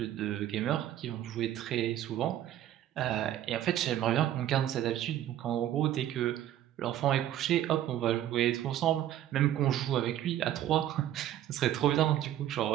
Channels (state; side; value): quieter; left; 12.0 dB